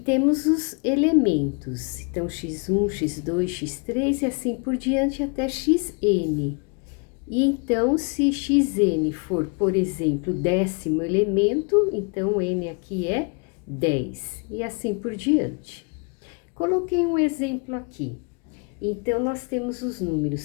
os elementos. Então, x1, x2, x3 e assim por diante até xn. E então, se xn for, por exemplo, o 10º elemento, então n aqui é 10, e assim por diante. Coloquei um exemplo aqui. Então, nós temos os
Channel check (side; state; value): right; quieter; 35.0 dB